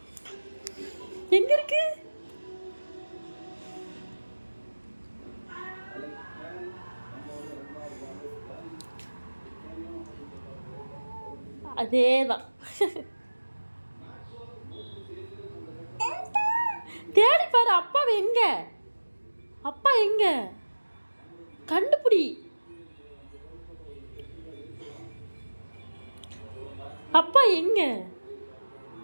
எங்க இருக்கு? அதேதான். தேடி பாரு. அப்பா எங்க? அப்பா எங்க? கண்டுபிடி. அப்பா எங்க?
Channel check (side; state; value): both; inverted; correlation -1.00